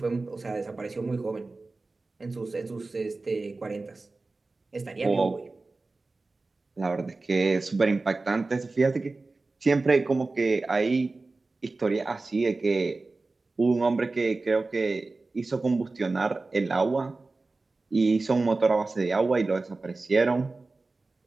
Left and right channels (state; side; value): quieter; left; 3.5 dB